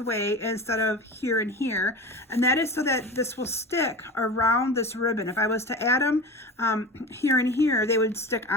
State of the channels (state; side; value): normal; both; correlation 0.31